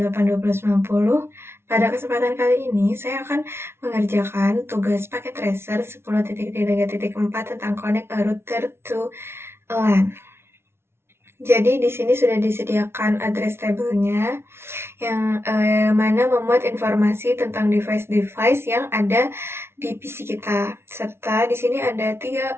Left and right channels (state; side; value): late; left; 0.12 ms